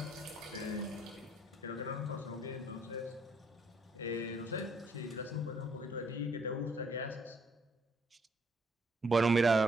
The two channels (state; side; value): normal; both; correlation 0.68